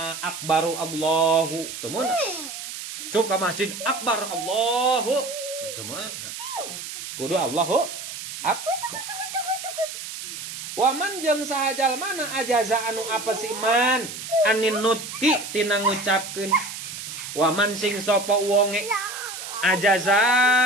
akbaru Allahu teu mun sub ka masjid akbar Allahu teu mun kudu Allahu Akbar. Waman jeung sahajal mana ajaza anu apa si man anin nutki tina ngucapkeun. Waman sing sapa wonge ajaza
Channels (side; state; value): right; noise; hiss, 9 dB below the sound